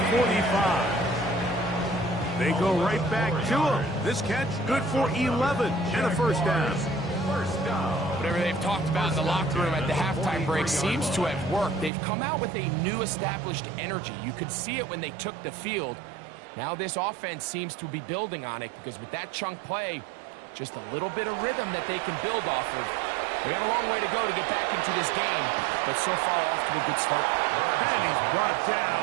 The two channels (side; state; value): left; drops out; at 11.9 s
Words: 45. They go right back to him. This catch good for 11 and a first down. Whatever they've talked about in the locker room at the halftime break seems to have worked. They've come out with a new established energy. You could see it when they took the field. Now this offense seems to be building on it because with that chunk play, just a little bit of rhythm that they can build off of. They have a long way to go to get back into this game, but so far off to a good start. And he's brought